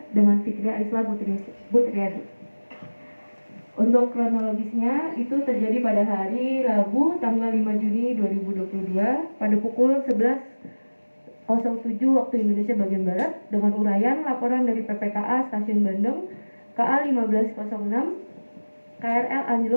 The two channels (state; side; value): inverted; both; correlation -1.00